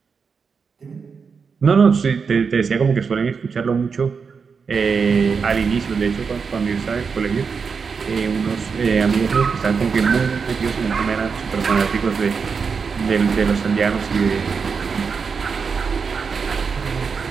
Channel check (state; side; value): quieter; left; 5.6 dB